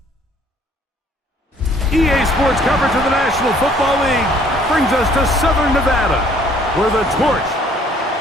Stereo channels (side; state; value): both; normal; correlation 0.59